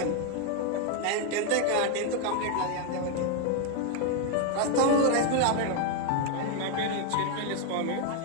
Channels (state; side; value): different; both; correlation 0.01